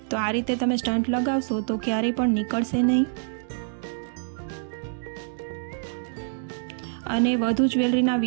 તો આ રીતે તમે સ્ટન્ટ લગાવશો તો ક્યારેય પણ નીકળશે નહીં. અને વધુ જ્વેલરીના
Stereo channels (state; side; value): silent; left; digital silence